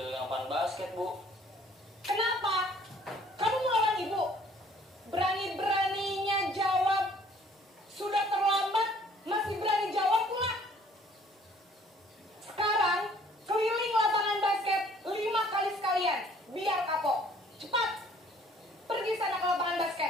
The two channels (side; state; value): both; normal; correlation 0.57